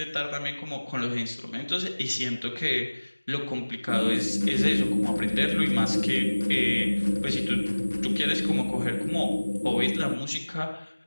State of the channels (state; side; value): inverted; both; correlation -1.00